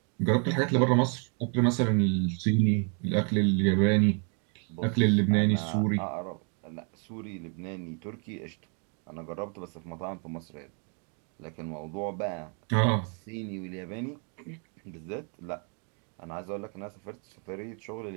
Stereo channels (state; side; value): quieter; left; 39.7 dB